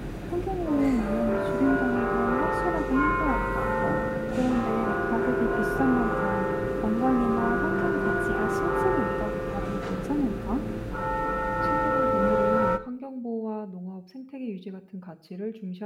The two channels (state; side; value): identical; both; correlation 1.00